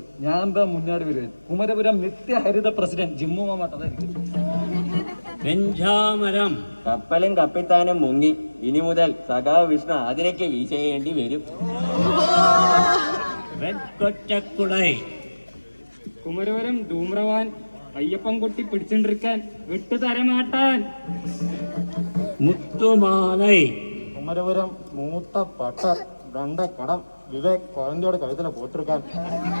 ഞാൻ എന്താ മുന്നാടി വരുവൻ. കുമരപുരം നിത്യഹരിത പ്രസിഡന്റ് ജിമ്മു മാമാട്ടതായിരിക്കും. വെഞ്ചാമരം. കപ്പലും കപ്പിത്താനും മുങ്ങി, ഇനി മുതൽ സഖാവ് വിഷ്ണു അതിനൊക്കെ വീശേണ്ടി വരും. വെക്കൊറ്റക്കുടൈ. കുമരവരം ധൂമ്രവാൻ അയ്യപ്പൻ കുട്ടി പിടിച്ചോണ്ടിരിക്കാൻ വിട്ടുതരമാട്ടാൻ. മുത്തുമാലൈ. കുമരപുരം മൂത്ത പട്ടർ കടം വിവേക് കുഴന്തയോട് കഴുതല പോത്തിരിക്കാൻ.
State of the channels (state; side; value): inverted; both; correlation -1.00